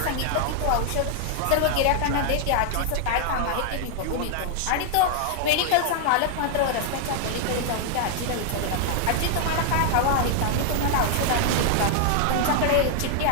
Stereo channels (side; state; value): both; different; correlation 0.00